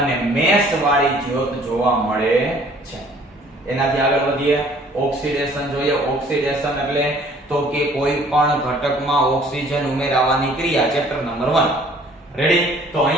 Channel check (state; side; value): normal; both; correlation 0.56